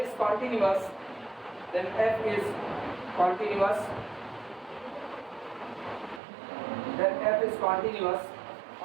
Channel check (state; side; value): drops out; left; at 6.2 s